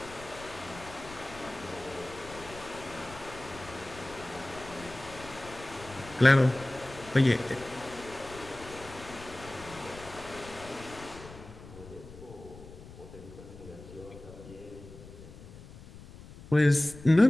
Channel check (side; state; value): left; noise; rumble, 17 dB below the sound